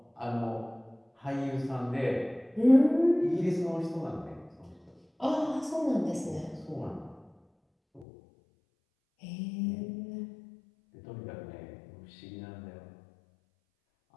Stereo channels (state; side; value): drops out; right; at 8.1 s